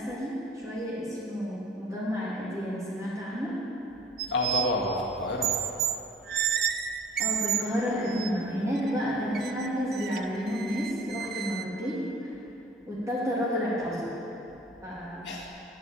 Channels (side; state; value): both; normal; correlation 0.49